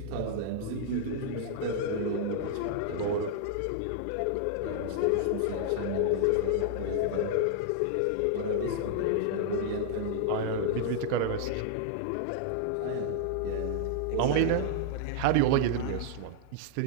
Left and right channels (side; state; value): both; different; correlation -0.01